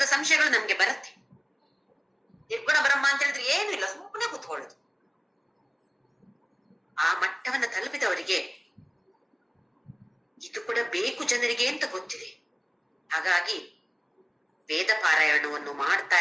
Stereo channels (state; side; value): identical; both; correlation 1.00